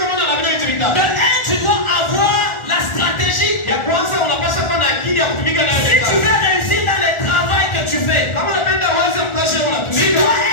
De un, tu dois avoir la stratégie. Ya kwanza unapaswa kuwa na akili ya kutumika nayo. Si tu veux réussir dans le travail que tu fais, kama unapenda uweze mkazi unatumika, tu dois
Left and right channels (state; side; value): late; right; 1.4 ms